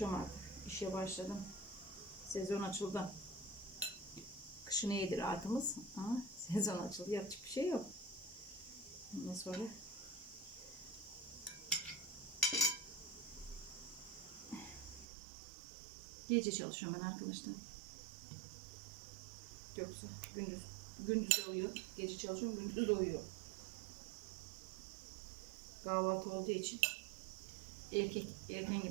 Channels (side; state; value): left; drops out; at 15.1 s